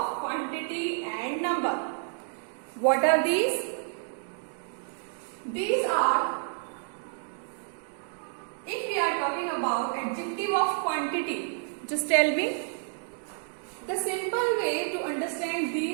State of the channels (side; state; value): left; silent; 58 dB below the other